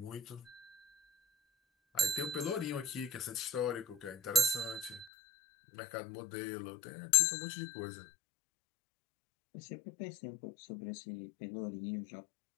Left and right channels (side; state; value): right; drops out; at 5.1 s